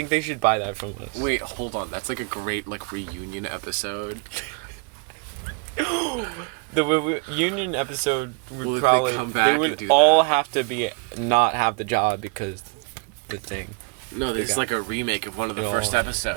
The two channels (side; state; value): left; quieter; 32.6 dB